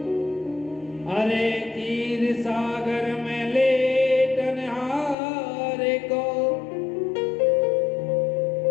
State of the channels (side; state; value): right; drops out; at 5.2 s